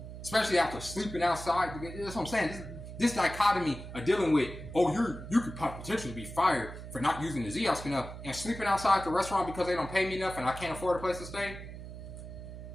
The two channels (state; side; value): noise; right; hum, 11 dB below the sound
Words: Especially after sleeping outside. That's what I'm saying. This dichotomy of dealing with, you could potentially be fired for not using the ZOS enough and sleeping outside the restaurant because they don't pay me enough and I can't afford a place to stay.